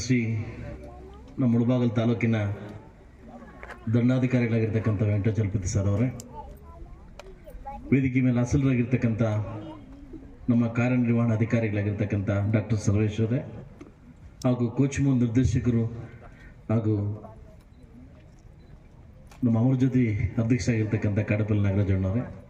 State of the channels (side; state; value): both; identical; correlation 1.00